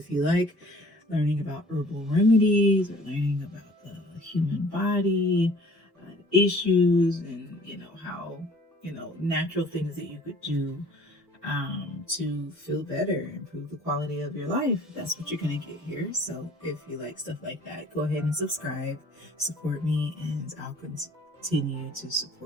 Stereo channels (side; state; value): both; normal; correlation 0.52